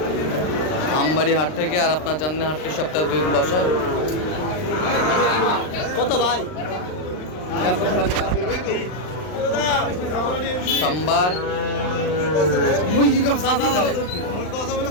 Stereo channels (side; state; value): right; late; 39 ms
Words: আমবাড়ি হাট থেকে। আর আপনার জানেন হাটটি সপ্তাহে 2 দিন বসে। কত ভাই? সোমবার,